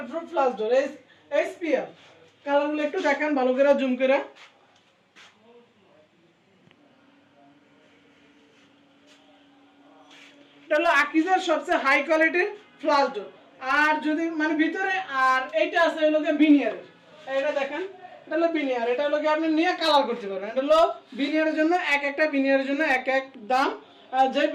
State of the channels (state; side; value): identical; both; correlation 1.00